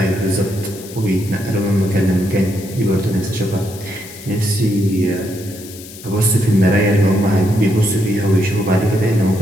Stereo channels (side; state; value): left; noise; hiss, 16 dB below the sound